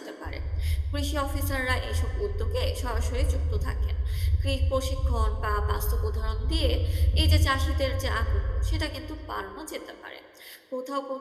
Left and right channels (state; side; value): identical; both; correlation 1.00